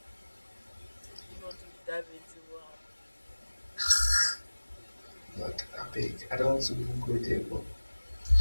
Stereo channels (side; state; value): both; inverted; correlation -1.00